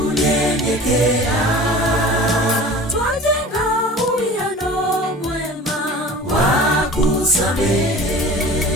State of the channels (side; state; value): both; normal; correlation 0.40